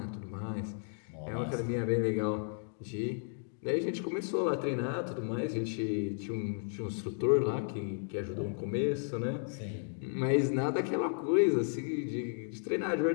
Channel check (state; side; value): silent; right; 55 dB below the other